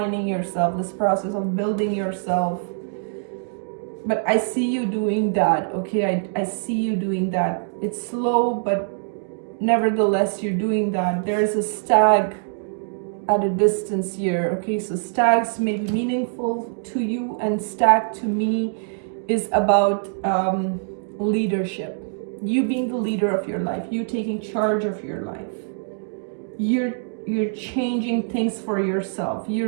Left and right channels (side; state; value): left; silent; digital silence